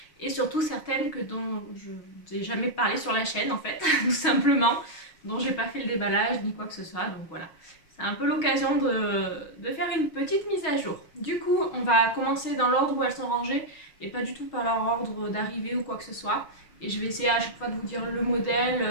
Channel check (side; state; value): right; late; 6.3 ms